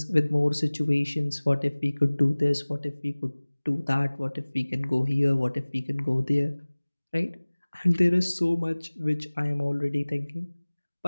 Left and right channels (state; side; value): inverted; both; correlation -1.00